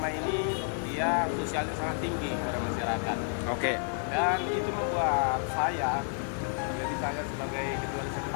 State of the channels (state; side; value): silent; right; 57 dB below the other